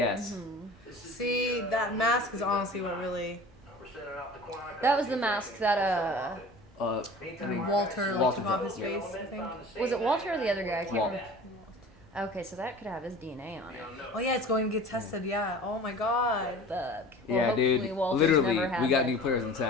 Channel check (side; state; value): both; normal; correlation 0.41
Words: Mm-hmm. See, that mask is honestly what really... That was the mask that Walter took off his face, I think. was it Walter or the other guy? I can't Walt. remember. Okay, so that could have his DNA on it. Oh yeah, it's going to get tested, yeah. Oh my god. Fuck. Well, Yeah, hopefully dude. Walter's Literally, never had we got that. new players in